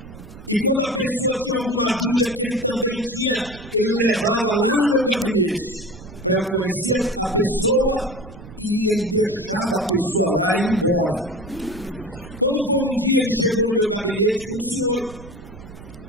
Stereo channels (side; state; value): right; noise; rumble, 16 dB below the sound